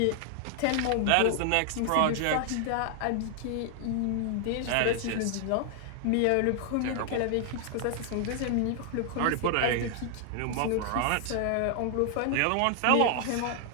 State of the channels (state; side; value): different; both; correlation 0.00